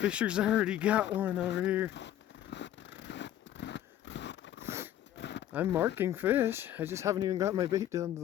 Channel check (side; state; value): right; quieter; 11.9 dB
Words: already got one over here. I'm marking fish. I just haven't even got my bait down to